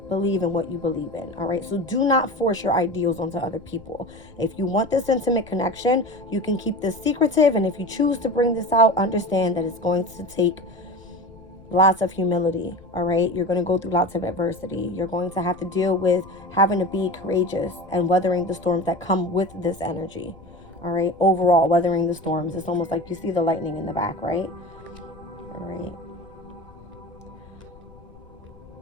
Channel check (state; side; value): noise; left; rumble, 24 dB below the sound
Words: believe in what you believe in. All right. So do not force your ideals onto other people. If you want this intimate connection, you can keep this secretive. And if you choose to bring this out, understand that it's going to take lots of humility, all right? You're going to go through lots of adversity. You're going to have to deal with having to be courageous and weathering the storms that come with this energy, all right? Overall, weathering the storms. It's almost like you see the lightning in the back, right? All right.